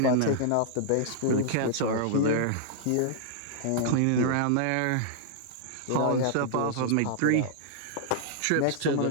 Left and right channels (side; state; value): both; different; correlation -0.01